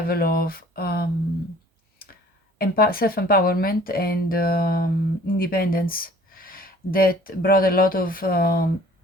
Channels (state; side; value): normal; both; correlation 0.51